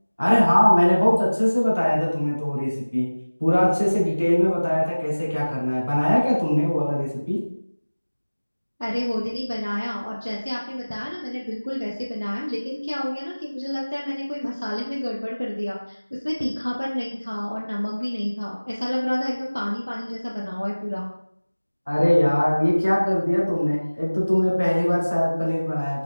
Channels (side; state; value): both; inverted; correlation -1.00